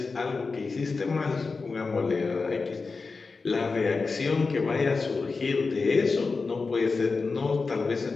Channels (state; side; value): quieter; right; 4.3 dB